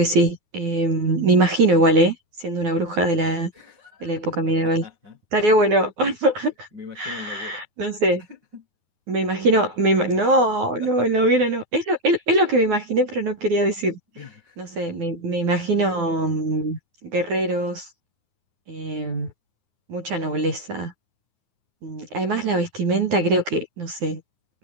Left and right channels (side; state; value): left; late; 9.5 ms